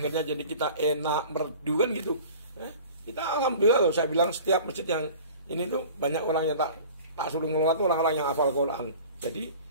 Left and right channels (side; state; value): both; inverted; correlation -0.42